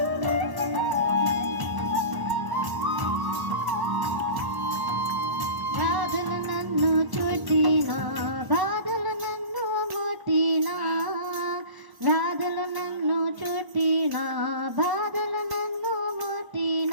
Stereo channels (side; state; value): left; late; 1.1 ms